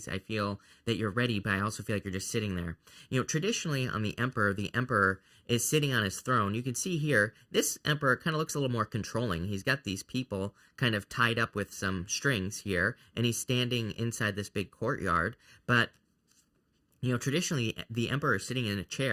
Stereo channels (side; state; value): both; identical; correlation 1.00